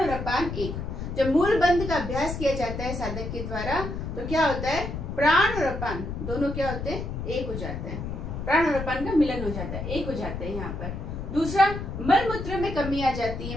अपान एक। जब मूल बंध का अभ्यास किया जाता है साधक के द्वारा तो क्या होता है? प्राण और अपान दोनों क्या होते हैं? एक हो जाते हैं। प्राण और अपान का मिलन हो जाता है, एक हो जाते हैं यहाँ पर। दूसरा, मल मूत्र में कमी आ जाती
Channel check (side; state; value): left; noise; rumble, 6 dB below the sound